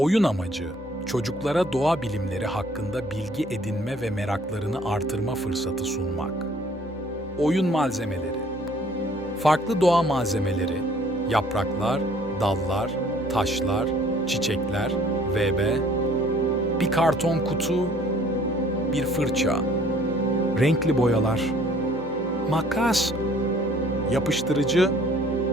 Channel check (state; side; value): normal; both; correlation 0.57